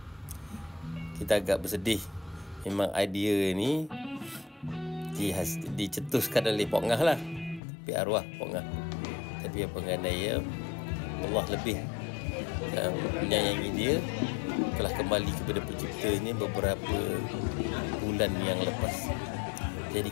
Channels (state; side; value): drops out; right; at 7.6 s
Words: Kita agak bersedih. Memang idea ni dicetuskan oleh Pak Ngah lah, tapi arwah Pak Ngah. Tapi apa nganai Allah lebih menyayangi dia, telah kembali kepada penciptanya beberapa bulan yang lepas. Jadi